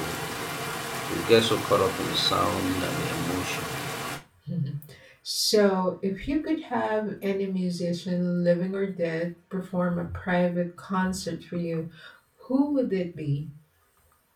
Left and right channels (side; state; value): both; identical; correlation 1.00